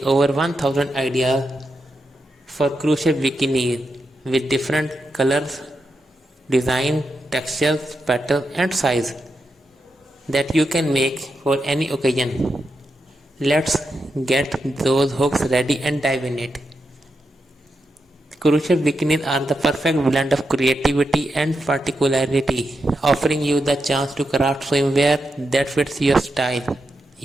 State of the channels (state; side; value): normal; both; correlation 0.86